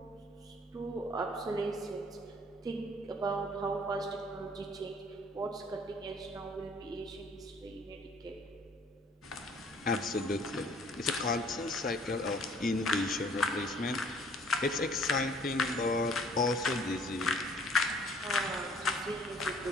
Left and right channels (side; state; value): both; normal; correlation 0.57